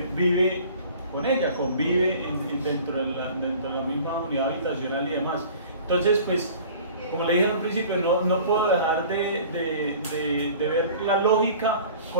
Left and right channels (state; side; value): inverted; both; correlation -0.46